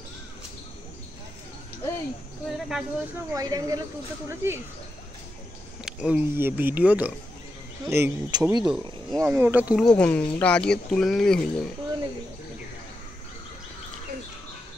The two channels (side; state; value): both; normal; correlation 0.87